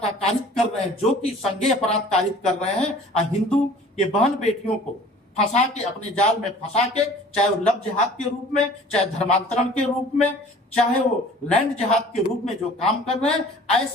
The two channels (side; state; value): both; normal; correlation 0.48